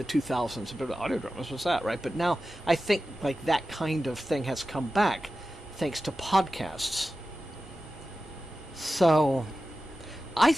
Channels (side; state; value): both; normal; correlation 0.94